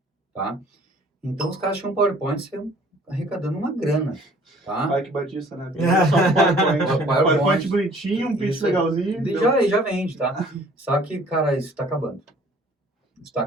tá? Então os caras tinham um PowerPoint arrecadando uma grana, tá? Ai, que batista, né? Só um PowerPoint. PowerPoint bonitinho, um pitch Isso, legalzinho. Já vende, tá? Só que, cara, isso está acabando. Isso está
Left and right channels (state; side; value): normal; both; correlation 0.54